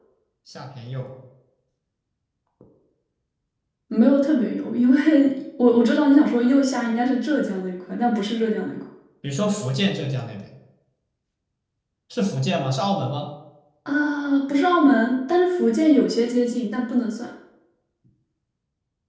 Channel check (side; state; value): both; identical; correlation 1.00